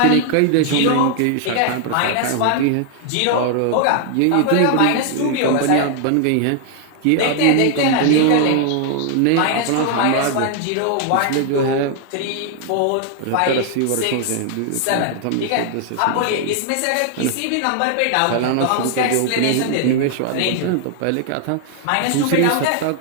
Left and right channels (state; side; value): different; both; correlation 0.00